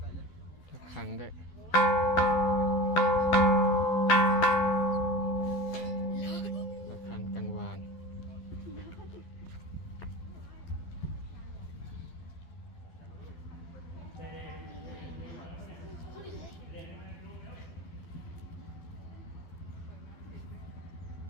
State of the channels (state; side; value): late; right; 12 ms